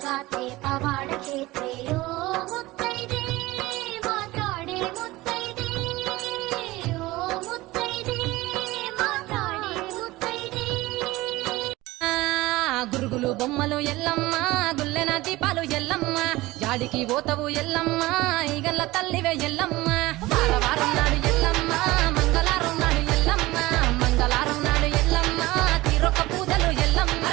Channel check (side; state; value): left; quieter; 19.3 dB